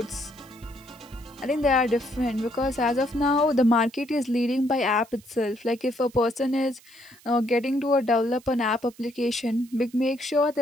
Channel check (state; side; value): noise; right; hiss, 26 dB below the sound